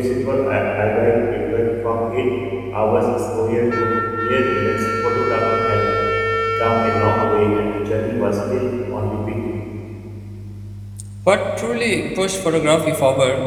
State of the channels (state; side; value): identical; both; correlation 1.00